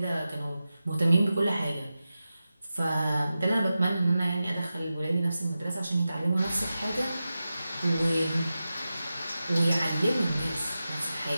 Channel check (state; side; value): inverted; both; correlation -0.93